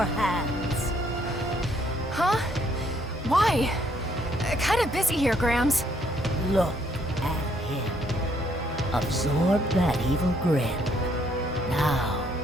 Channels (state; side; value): normal; both; correlation 0.68